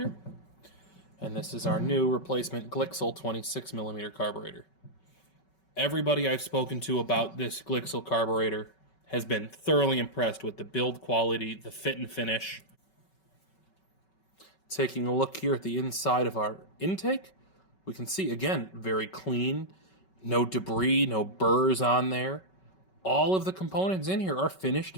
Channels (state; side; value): late; right; 5.3 ms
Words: and this is our new replacement Glixel 26mm carburetor. Everybody I've spoken to about this Glixel carburetor has been thoroughly impressed with the build quality, the fit and finish. Taking a look here at the inside of our intake, we can see, again, very clean, no debris, no burrs on there. All of the components in here are finished